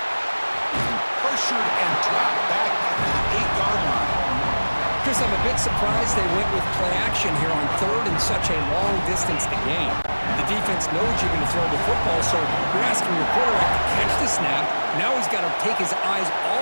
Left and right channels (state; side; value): inverted; both; correlation -1.00